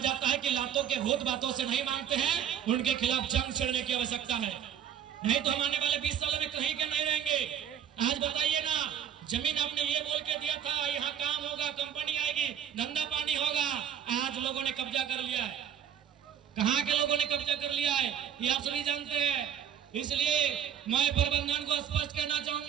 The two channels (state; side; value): quieter; left; 9.2 dB